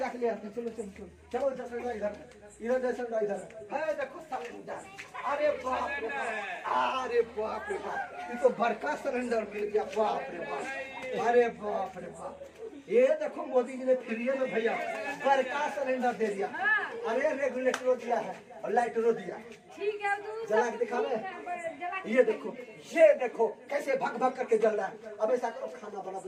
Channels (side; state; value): both; identical; correlation 1.00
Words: ले आते हैं, चलो चलो चलो चलो सिलेंडर इधर सिलेंडर इधर है, देखो सिलेंडर। अरे बाप रे बाप, अरे बाप रे बाप, ये तो बड़का सिलेंडर मिल गया। बाप रे बाप, अरे बाप रे बाप, ये देखो मोदी जी ने फ्री में भैया बड़का सिलेंडर दे दिया। अरे रेगुलेटरो दिया है और लाइटरो दिया। ठीक है तो जला के दिखा ठीक है, जला के ये देखो कैसे भग भग करके जल रहा है। अब ऐसा करो खाना बना